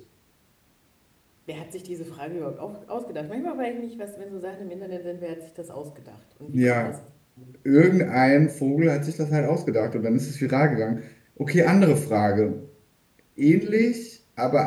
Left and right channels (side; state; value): both; identical; correlation 1.00